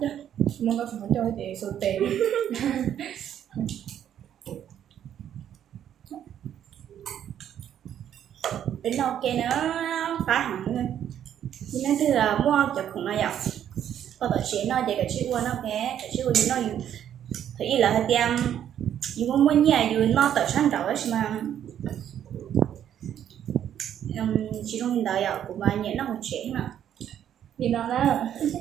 Muốn có phải cho chị số tiền. Đến đâu kia nó phá hẳn luôn. Nhưng nó thứ là mua chụp không nó dọc. Có tổ chế nó để cái chữ qua nó cái chữ qua nó dùng. Thì là hơi tiêm dùng muốn nhà dùng nó tự sáng đầu ấy mà chỉ trong hiện đại của bà nhớ nó một chế mà Thì nó đó.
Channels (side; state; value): left; quieter; 10.0 dB